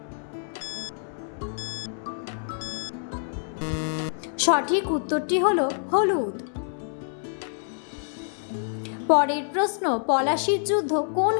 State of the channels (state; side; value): silent; right; 60 dB below the other